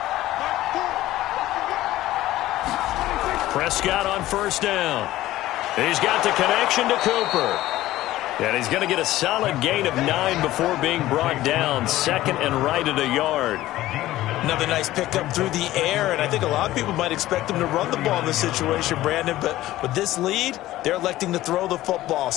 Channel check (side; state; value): right; quieter; 15.6 dB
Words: Prescott on 1st down. He's got the connection to Cooper. And he's going to get a solid gain of 9 before being brought down. 2nd and right at a yard. Another nice pickup through the air, and I think a lot of people might expect them to run the ball in this situation, Brandon, but with this lead, they're electing to throw the football.